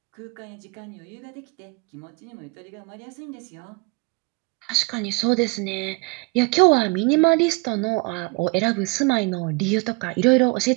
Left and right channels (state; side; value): quieter; left; 28.4 dB